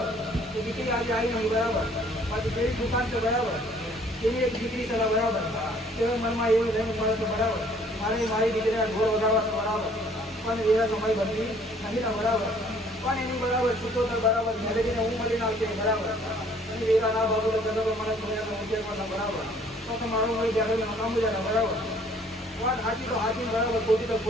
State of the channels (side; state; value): both; normal; correlation 0.58